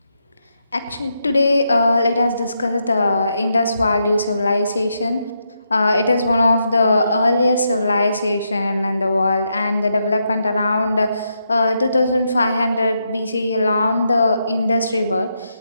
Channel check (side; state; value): both; inverted; correlation -0.81